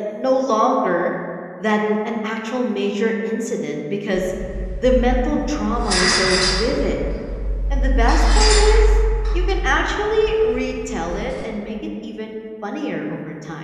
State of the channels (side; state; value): both; identical; correlation 1.00